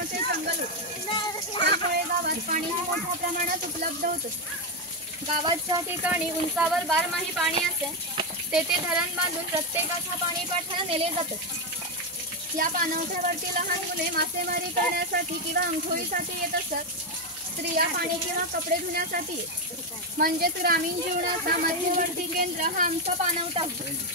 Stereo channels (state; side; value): normal; both; correlation 0.06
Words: जंगल होते. त्यामुळे गावात पाणी मोठ्या प्रमाणात उपलब्ध होत असते. गावाच्या ठिकाणी उंचावर 12माही पाणी असे. तेथे धरण बांधून प्रत्येकाच्या पाणी पाठ्याला नेले जातात. या पाणवठ्यावरती लहान मुले मासेमारी करण्यासाठी किंवा आंघोळीसाठी येत असत. स्त्रिया पाणी किंवा कपडे धुण्यासाठी येत. म्हणजेच ग्रामीण जीवनाचा मध्यवर्ती केंद्र हा आमचा पाणवठा होता.